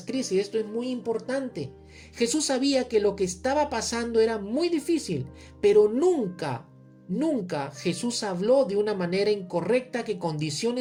crisis, esto es muy importante. Jesús sabía que lo que estaba pasando era muy difícil, pero nunca Jesús habló de una manera incorrecta que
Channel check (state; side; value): identical; both; correlation 1.00